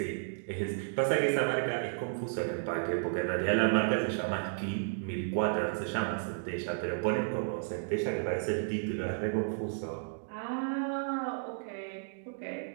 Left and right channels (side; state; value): left; silent; digital silence